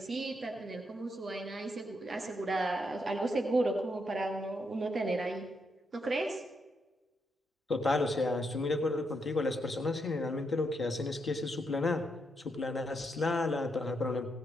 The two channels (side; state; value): both; normal; correlation 0.80